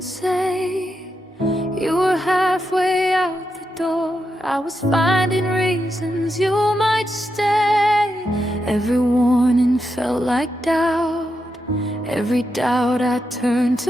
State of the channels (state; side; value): normal; both; correlation 0.85